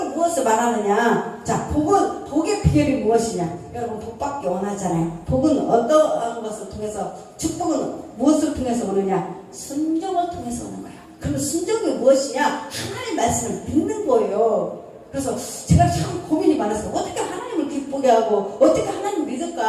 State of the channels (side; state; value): both; identical; correlation 1.00